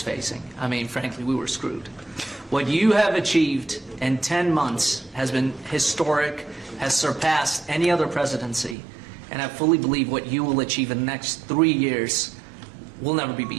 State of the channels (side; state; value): left; drops out; at 8.8 s